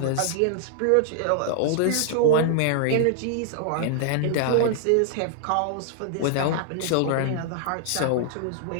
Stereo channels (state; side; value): different; both; correlation -0.01